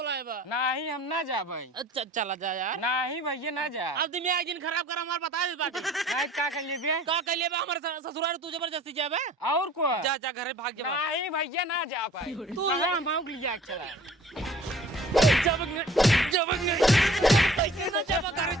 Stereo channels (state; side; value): normal; both; correlation 0.49